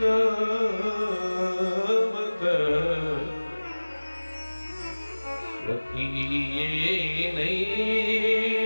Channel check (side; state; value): both; inverted; correlation -1.00